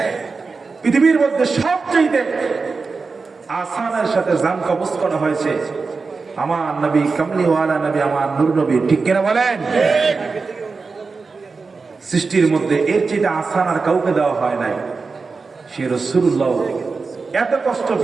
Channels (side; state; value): left; quieter; 4.4 dB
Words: পৃথিবীর মধ্যে সবচেয়ে আসানের সাথে জান কবজ করা হয়েছে আমার নবী, কামলিওয়ালা নবী, আমার নূর নবী। ঠিক কিনা বলেন? সৃষ্টির মধ্যে এর চেয়ে আসান আর কাউকে দেওয়া হয় নাই। সে রাসূলুল্লাহ এত কষ্ট